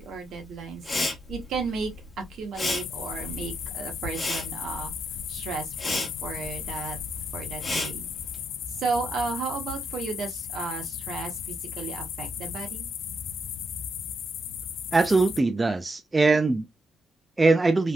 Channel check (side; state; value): both; normal; correlation 0.81